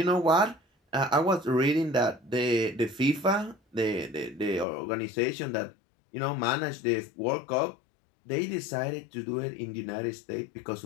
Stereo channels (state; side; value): drops out; right; at 4.7 s